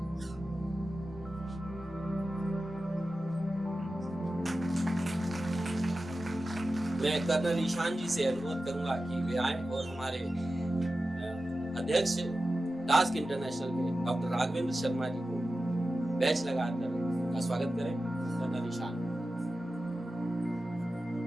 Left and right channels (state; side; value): normal; both; correlation 0.94